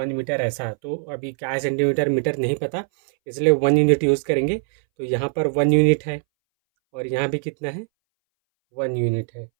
मीटर ऐसा। तो अभी क्या है, सेंटीमीटर मीटर नहीं पता, इसलिए 1 यूनिट यूज़ करेंगे। तो यहाँ पर 1 यूनिट है और यहाँ भी कितना है, 1 यूनिट है।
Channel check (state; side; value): silent; left; 62 dB below the other